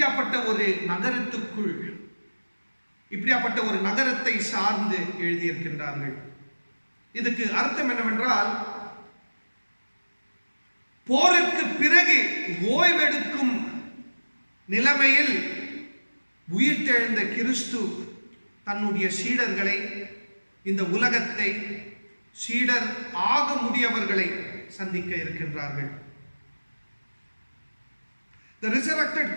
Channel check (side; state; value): both; inverted; correlation -1.00